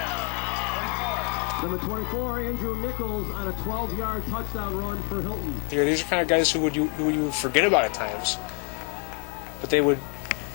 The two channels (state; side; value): quieter; right; 34.7 dB